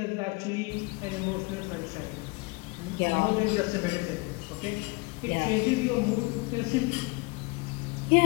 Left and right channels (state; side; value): quieter; right; 26.4 dB